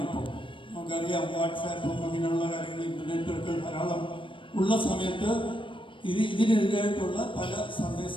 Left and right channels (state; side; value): late; right; 0.25 ms